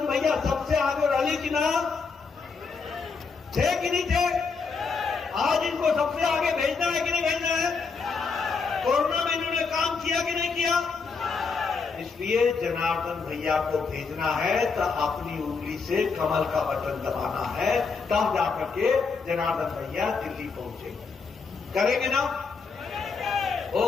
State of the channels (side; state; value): right; quieter; 4.9 dB